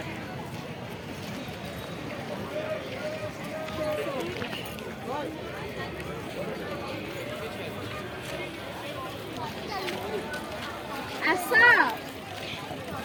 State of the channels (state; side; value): identical; both; correlation 1.00